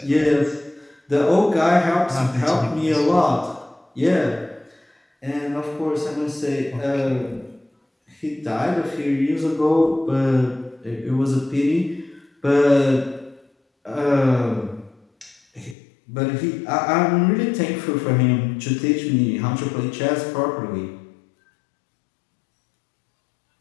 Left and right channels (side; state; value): right; drops out; at 15.8 s